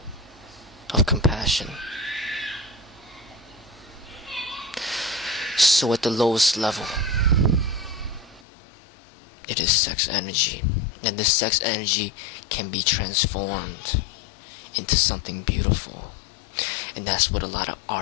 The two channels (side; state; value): right; drops out; at 8.4 s